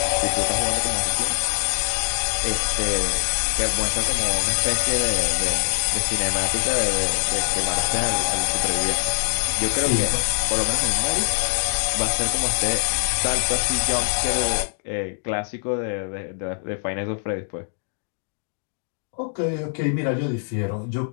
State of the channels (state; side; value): silent; right; digital silence